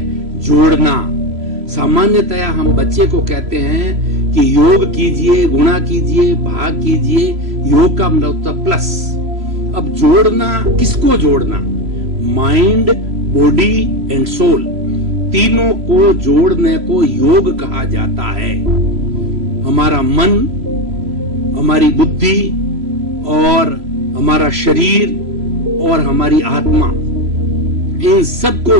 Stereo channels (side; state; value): left; late; 3.0 ms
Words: जोड़ना। सामान्यतया हम बच्चे को कहते हैं कि योग कीजिए, गुणा कीजिए, भाग कीजिए। योग का मतलब होता है प्लस। अब जोड़ना, किसको जोड़ना? माइंड, बॉडी एंड सोल, तीनों को जोड़ने को योग कहा जाता है। हमारा मन, हमारी बुद्धि और हमारा शरीर और हमारी आत्मा, इन सबको